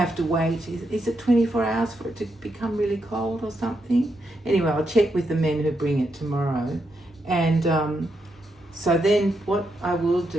to wait. Is it 24 hours for it to become really cold or something? Anyway, I'll check with the men who bring it tomorrow. And so then what I will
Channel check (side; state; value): both; normal; correlation 0.82